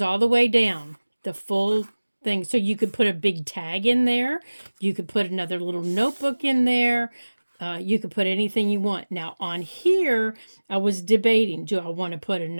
all the way down, the full thing. So you could put a big tag in there. You could put another little notebook in there. You could put anything you want. Now, on here, I was debating, do I want to put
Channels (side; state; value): both; inverted; correlation -1.00